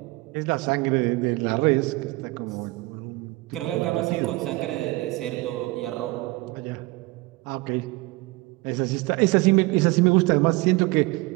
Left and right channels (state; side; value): quieter; left; 22.2 dB